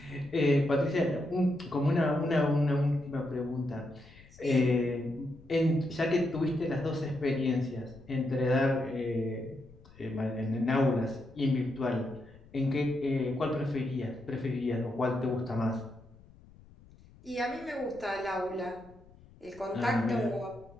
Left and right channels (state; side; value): noise; left; rumble, 24 dB below the sound